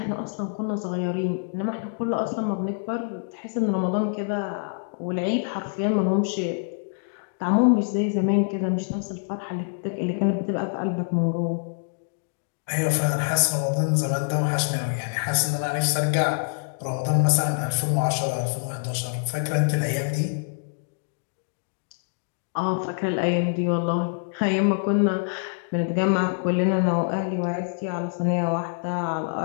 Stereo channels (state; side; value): silent; right; digital silence